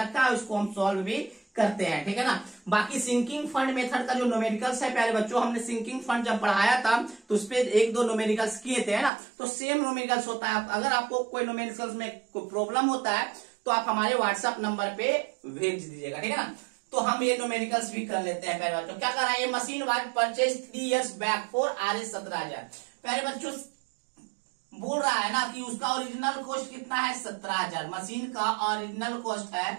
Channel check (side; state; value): left; drops out; at 9.1 s